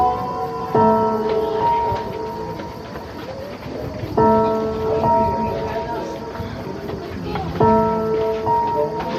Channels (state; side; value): identical; both; correlation 1.00